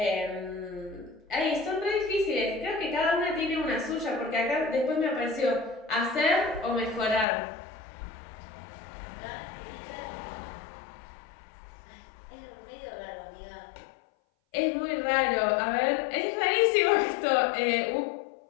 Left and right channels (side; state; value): right; drops out; at 7.2 s